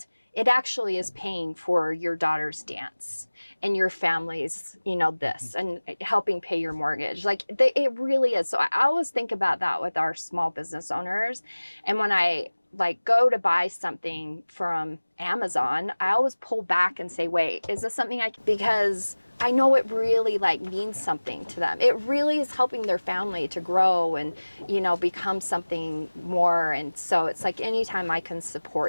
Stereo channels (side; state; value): both; inverted; correlation -1.00